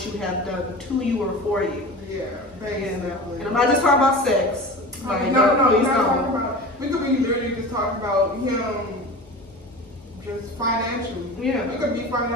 you have done to you or for you. Yeah, basically. You know? And I'm not just talking about sex. Like, No, please we're not talking don't. about. We could be literally just talking about him, just financially. Yeah. We could be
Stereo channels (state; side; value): normal; both; correlation 0.34